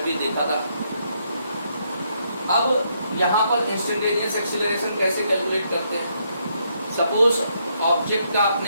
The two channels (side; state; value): both; inverted; correlation -0.75